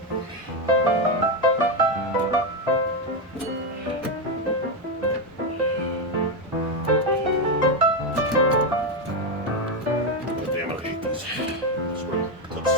Damn, I hate these.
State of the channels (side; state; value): both; normal; correlation 0.07